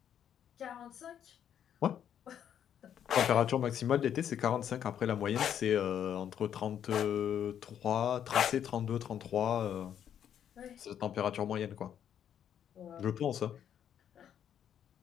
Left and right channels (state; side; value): quieter; right; 9.4 dB